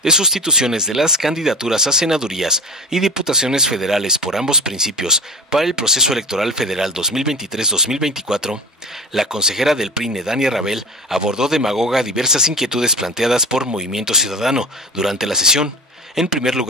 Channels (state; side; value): normal; both; correlation 0.30